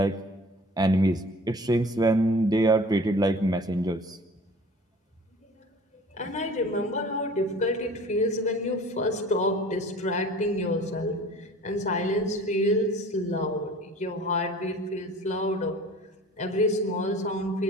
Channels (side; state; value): both; normal; correlation 0.45